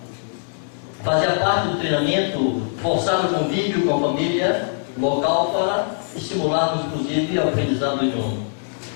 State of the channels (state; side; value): silent; right; 64 dB below the other